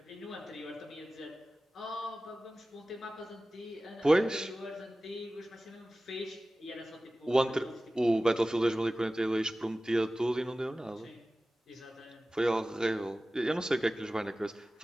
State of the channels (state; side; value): normal; both; correlation 0.96